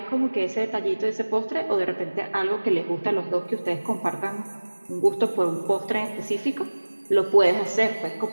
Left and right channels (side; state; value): both; inverted; correlation -1.00